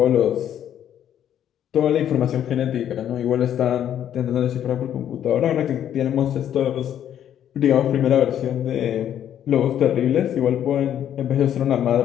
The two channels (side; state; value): right; quieter; 10.2 dB